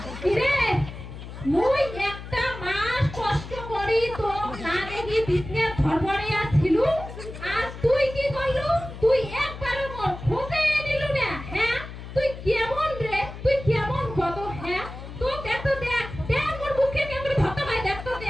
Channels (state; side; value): noise; left; hum, 12 dB below the sound